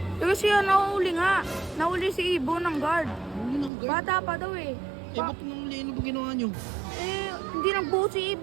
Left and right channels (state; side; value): drops out; left; at 3.7 s